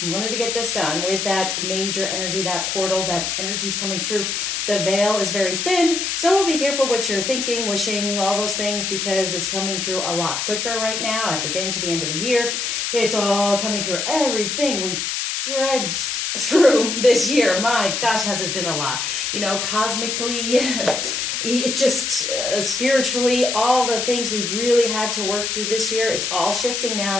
We wanted to get this done with that major energy, that portal, that energy's coming through. The veil is very thin, so be careful what you're thinking, wishing, all those things, because it's coming through a lot quicker right now as we're getting to the end of the year. It's all coming through everything we've dredged through this year. My gosh, has it been a lot. You know, cosmically, it just spiritually, all the things we've really had to work through this year, it's all shifting now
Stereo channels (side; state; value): left; noise; hiss, 1 dB below the sound